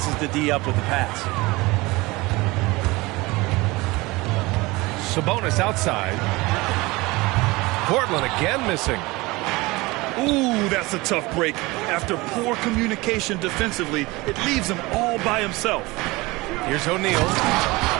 the D up with the pass. Sabonis outside. Portland again missing. Ooh, that's a tough break. After poor communication defensively, it leaves him all by himself. Here's O'Neal,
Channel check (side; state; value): left; quieter; 22.3 dB